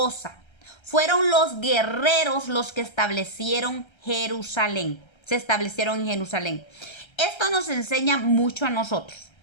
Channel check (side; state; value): right; late; 1.3 ms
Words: Fueron los guerreros los que establecieron Jerusalén. Se establecieron en Jerusalén. Esto nos enseña mucho a nosotros,